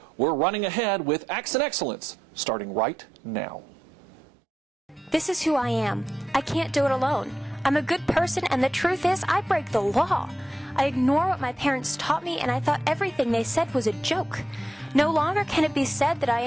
We're running ahead with Accent Excellence, starting right now. This is who I am. I can't do it alone. I'm a good person, and the truth is, I break the law. I ignore what my parents taught me, and I thought everything they said was a joke. No longer can it be said that I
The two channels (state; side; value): normal; both; correlation 0.87